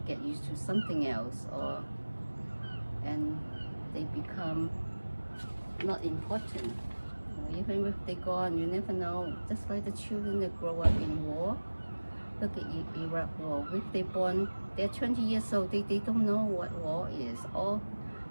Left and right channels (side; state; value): both; inverted; correlation -1.00